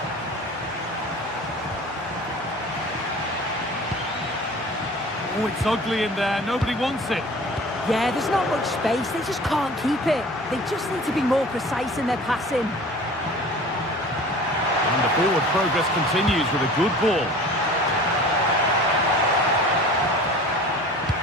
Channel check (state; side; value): normal; both; correlation 0.42